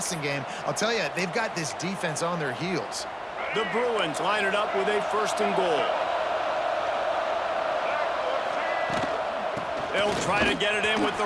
game. I'll tell you, they've got this defense on their heels. The Bruins line it up with a 1st and goal. They'll try to get it in with the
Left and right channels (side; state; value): both; identical; correlation 1.00